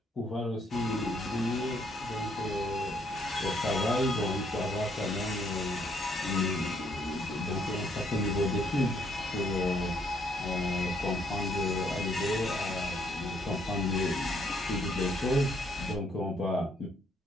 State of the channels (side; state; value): both; normal; correlation 0.69